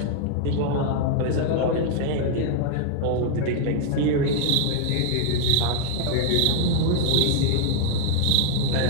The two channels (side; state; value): both; different; correlation 0.00